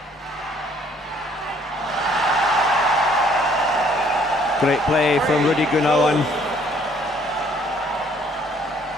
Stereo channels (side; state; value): both; normal; correlation 0.61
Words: Great play from Rudy Gunawan.